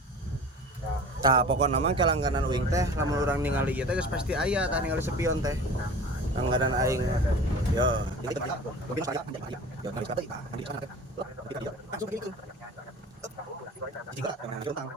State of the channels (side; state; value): both; normal; correlation 0.40